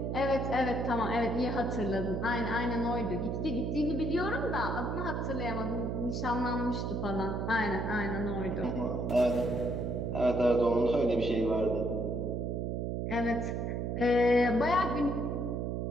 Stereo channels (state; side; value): noise; right; hum, 1 dB below the sound